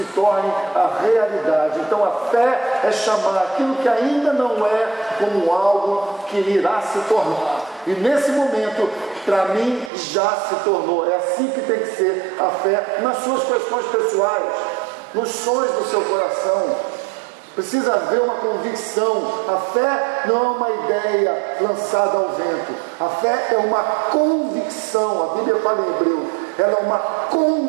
torne a realidade. Então a fé é chamar aquilo que ainda não é como algo que irá se tornar. E nesse momento, para mim, já se tornou. É assim que tem que ser a fé nas suas questões pessoais, nos sonhos do seu coração. Precisa haver uma convicção. A fé não é uma ideia lançada ao vento. A fé é uma convicção. A Bíblia fala em hebreu. Ela é uma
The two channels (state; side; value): drops out; left; at 9.9 s